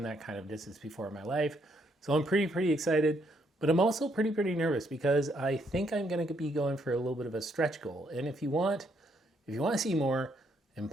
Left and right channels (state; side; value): normal; both; correlation 0.72